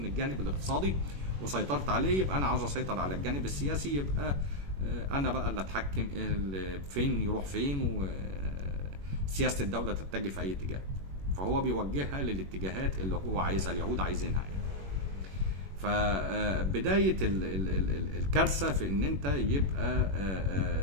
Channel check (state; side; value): late; left; 21 ms